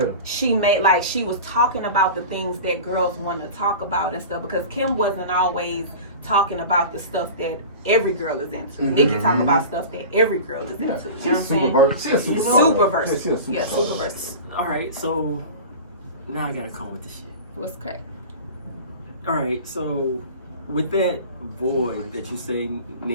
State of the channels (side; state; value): both; inverted; correlation -0.34